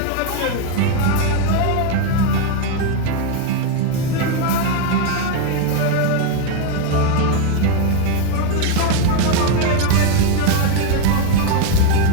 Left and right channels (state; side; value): different; both; correlation 0.01